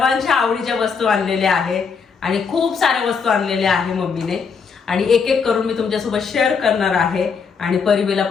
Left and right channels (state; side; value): quieter; right; 5.7 dB